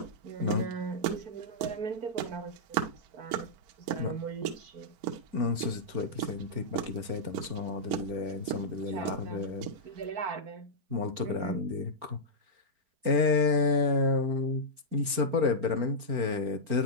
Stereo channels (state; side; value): late; left; 4.4 ms